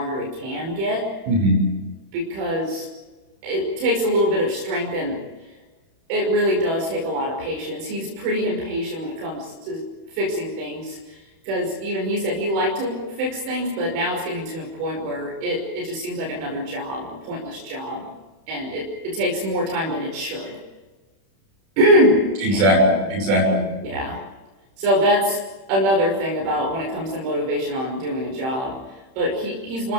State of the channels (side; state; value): left; late; 31 ms